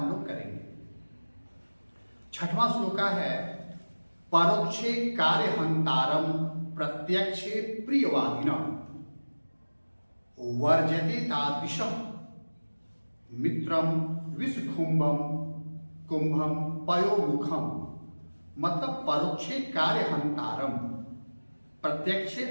लोग करेंगे। 6वां श्लोका है परोक्षे कार्यहंतारम प्रत्यक्षे प्रियवादिनम वर्जते तादृशम मित्रम विषकुंभम कुंभम पयोमुखम। मतलब परोक्षे कार्यहंतारम प्रत्यक्षे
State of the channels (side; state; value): both; inverted; correlation -1.00